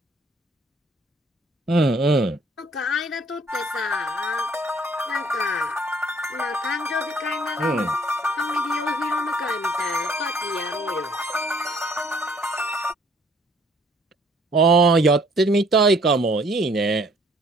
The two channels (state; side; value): normal; both; correlation 0.60